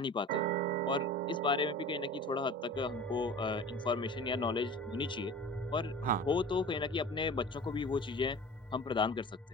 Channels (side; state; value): both; normal; correlation 0.38